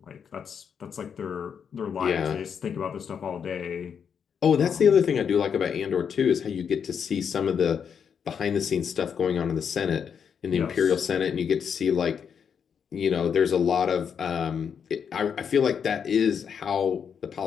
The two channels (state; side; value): quieter; right; 7.2 dB